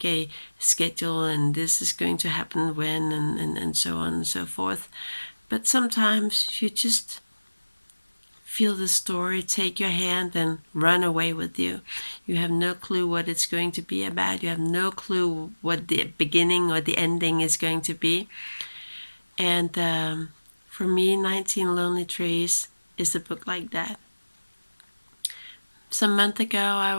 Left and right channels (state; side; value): inverted; both; correlation -1.00